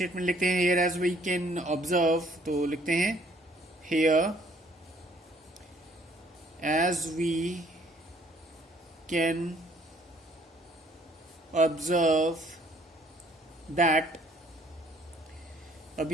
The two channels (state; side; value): normal; both; correlation 0.61